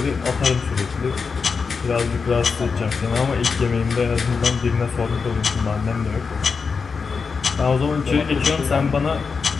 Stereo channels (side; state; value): right; quieter; 5.2 dB